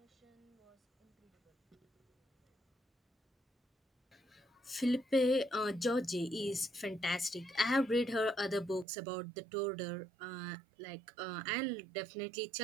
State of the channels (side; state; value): left; drops out; at 8.8 s